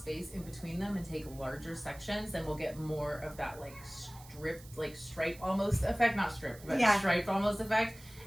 in between them and take larger sections, then we'll get more of that like stripe almost effect, not stripped, but striped almost effect.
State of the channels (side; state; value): right; noise; hiss, 20 dB below the sound